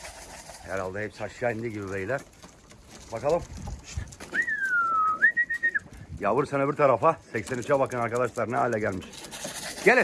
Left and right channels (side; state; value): both; identical; correlation 1.00